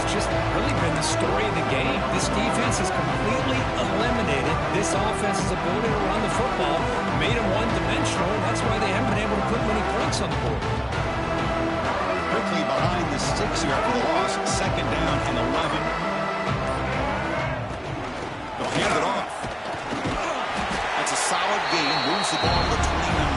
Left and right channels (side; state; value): both; identical; correlation 1.00